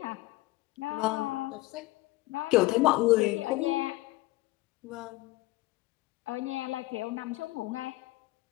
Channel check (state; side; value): quieter; right; 20.1 dB